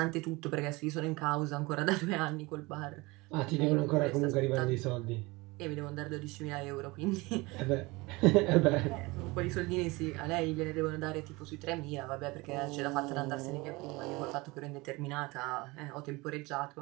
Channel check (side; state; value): left; quieter; 23.4 dB